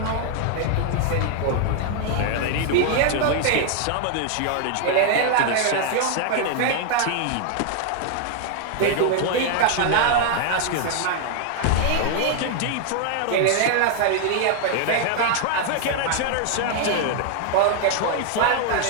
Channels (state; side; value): different; both; correlation 0.00